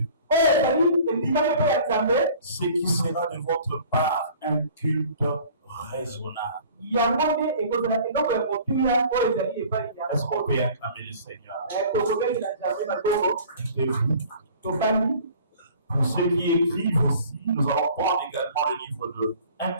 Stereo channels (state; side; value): inverted; both; correlation -0.49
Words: ce qui sera de votre part un culte raisonnable. Est-ce qu'on peut acclamer le Seigneur? Pour ceux qui écrivent aussi, nous allons prendre également le livre de 1